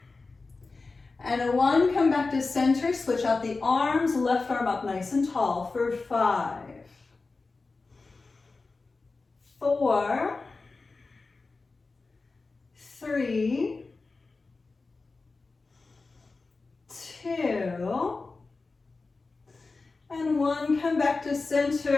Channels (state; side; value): quieter; right; 3.9 dB